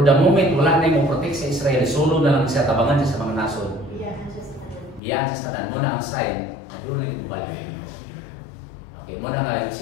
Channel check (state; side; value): drops out; right; at 5.0 s